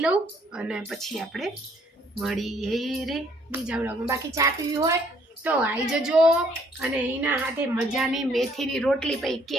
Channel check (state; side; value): normal; both; correlation 0.64